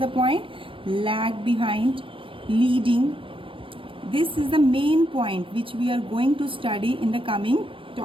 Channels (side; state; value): left; late; 0.25 ms